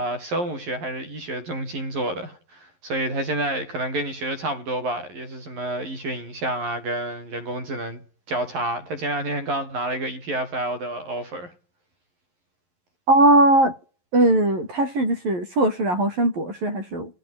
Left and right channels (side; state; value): left; late; 11 ms